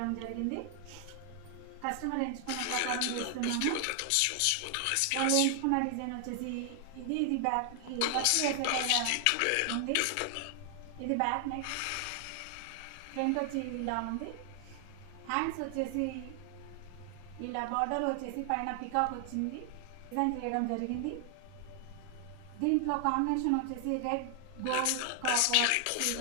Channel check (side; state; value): both; different; correlation 0.00